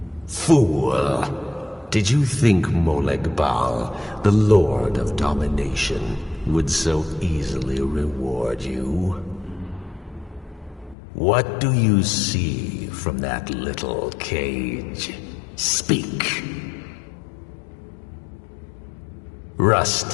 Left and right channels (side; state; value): right; drops out; at 11.0 s